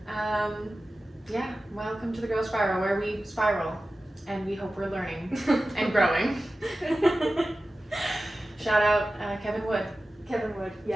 Welcome to the Growth Spiral, where we spiral and we hope we're learning and growing. Shout out Kevin Wood. Kevin Wood,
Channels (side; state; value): both; normal; correlation 0.95